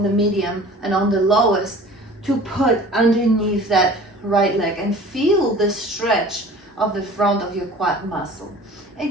the medium, and on the lowest to put underneath that right leg and feel the stretch of the front of your quad muscle.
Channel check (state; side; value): normal; both; correlation 0.44